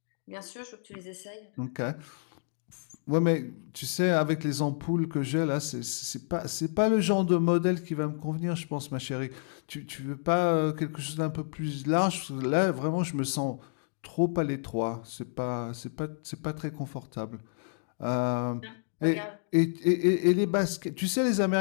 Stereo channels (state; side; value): silent; right; digital silence